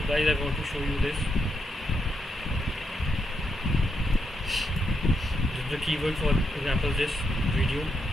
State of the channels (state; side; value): normal; both; correlation 0.81